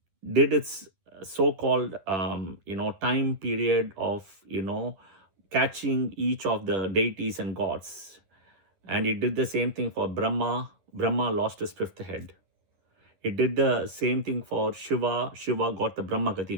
did its so-called, time period of, catching each of the deities and gods. And it did the same thing for Brahma. Brahma lost his fifth head. It did the same thing for Shiva. Shiva got the Brahma Gati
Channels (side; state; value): left; late; 10 ms